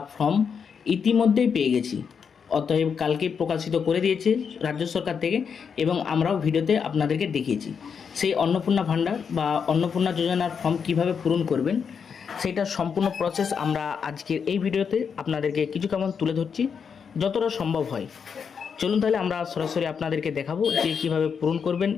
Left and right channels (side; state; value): right; quieter; 6.5 dB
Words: ফর্ম ইতিমধ্যেই পেয়ে গেছি, অতএব কালকে প্রকাশিত করে দিয়েছে রাজ্য সরকার থেকে এবং আমরাও ভিডিওতে আপনাদেরকে দেখিয়েছি। সেই অন্নপূর্ণা ভাণ্ডার বা অন্নপূর্ণা যোজনার ফর্ম কিভাবে পূরণ করবেন সেটা সম্পূর্ণ প্রসেস আমরা আজকের এই ভিডিওতে আপনাদেরকে কিছু কেমন তুলে ধরছি যতটা সম্ভব হয়। চলুন তাহলে আমরা সরাসরি আপনাদেরকে দেখাবো যে কীভাবে পূরণ করবেন